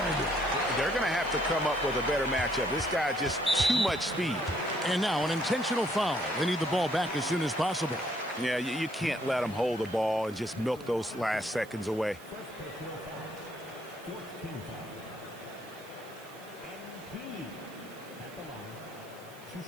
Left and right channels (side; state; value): right; noise; hiss, 22 dB below the sound